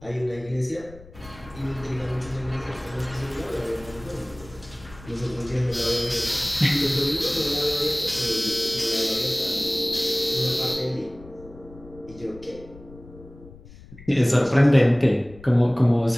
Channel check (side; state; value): left; noise; rumble, 20 dB below the sound